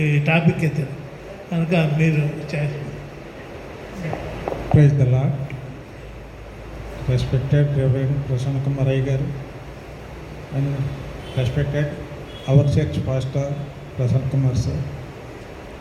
టాపిక్ ఎత్తారు కనుక మీరు choice. Praise the lord. Respected reverend Prasanna Kumar అయ్య గారు and respected our church pastor Prasanna Kumar sir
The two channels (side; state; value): both; identical; correlation 1.00